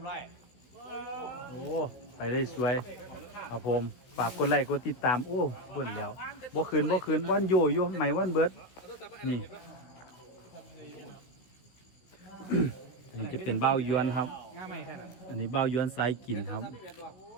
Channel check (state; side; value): late; right; 16 ms